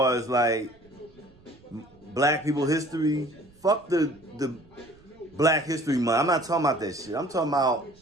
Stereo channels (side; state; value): right; noise; rumble, 28 dB below the sound